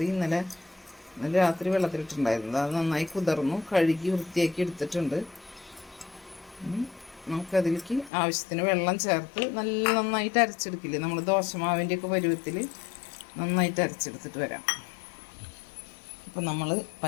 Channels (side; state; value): right; drops out; at 8.1 s